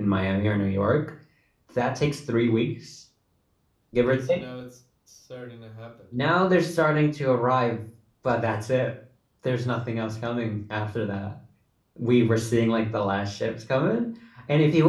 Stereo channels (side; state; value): both; identical; correlation 1.00